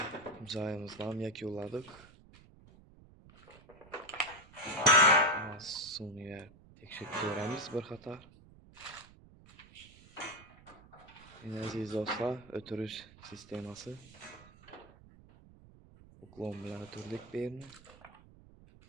Joyimizni ham yakunladik. Suvni tekshirib ko'ramiz bir qator. Aziz do'stlar, o'tirish sistemasi. Buklon bilan o'tirdik bu yerni.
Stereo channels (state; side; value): noise; right; rumble, 22 dB below the sound